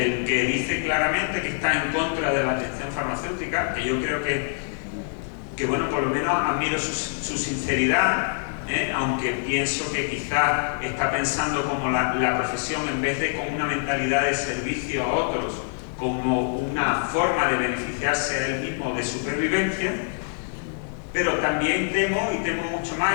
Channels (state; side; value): silent; right; 61 dB below the other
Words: el que dice claramente que está en contra de la atención farmacéutica, que yo creo que bueno, por lo menos admiro su sinceridad, aunque pienso que quizás está pensando como la profesión, en vez de con una mentalidad de servicio a otros, como una forma de beneficiarse a él mismo de supervivencia. Pero también temo, y temo mucho más,